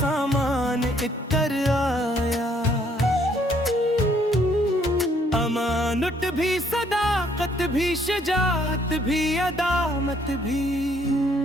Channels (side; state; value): both; normal; correlation 0.66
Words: इतर आया। अमानत भी सदाकत भी शजात भी अदामत भी